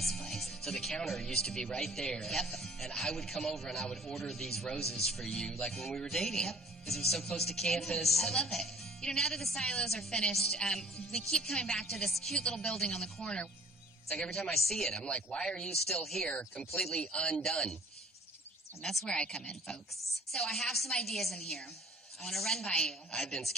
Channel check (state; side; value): normal; both; correlation 0.52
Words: place. So the counter used to be right there. Yep. And I would come over and I would order these roses for you, like when we were dating. Yep. Because it was so close to campus. I love it. You know, now that the silos are finished, we keep coming back to this cute little building on the corner. It's like every time I see it, I'm like, why are you still here, completely undone? And that's where I come in, folks. So I have some ideas in here. I want to run by you. I've been